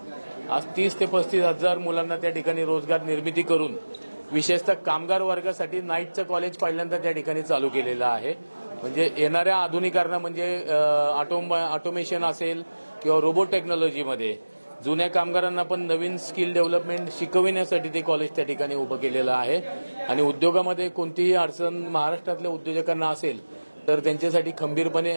आज 30 ते 35,000 मुलांना त्या ठिकाणी रोजगार निर्मिती करून विशेषतः कामगार वर्गासाठी नाईटचं कॉलेज पहिल्यांदा त्या ठिकाणी चालू केलेलं आहे। म्हणजे येणाऱ्या आधुनिकरणा म्हणजे ऑटोमेशन असेल किंवा रोबोट टेक्नॉलॉजीमध्ये जुन्या कामगारांना पण नवीन स्किल डेव्हलपमेंट शिकविण्यासाठी ते कॉलेज त्या ठिकाणी उभं केलेलं आहे आणि उद्योगामध्ये कोणतीही अडचण महाराष्ट्रातल्या उद्योजकांना असेल तर त्यांच्यासाठी खंबीरपणे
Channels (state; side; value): inverted; both; correlation -1.00